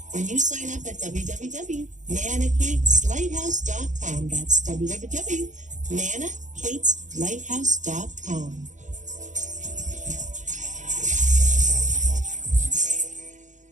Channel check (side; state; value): left; late; 0.36 ms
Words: when you sign up at www.nanakateslighthouse.com. That's www.nanakateslighthouse.com.